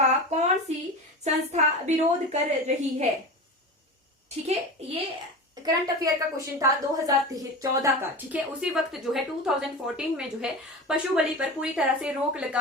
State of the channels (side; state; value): both; normal; correlation 0.28